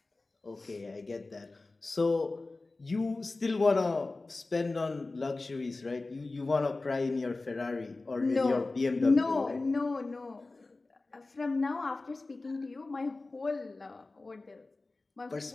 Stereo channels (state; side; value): quieter; right; 3.3 dB